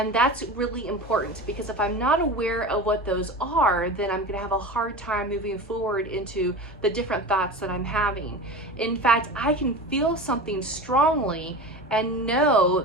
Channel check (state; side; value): normal; both; correlation 0.30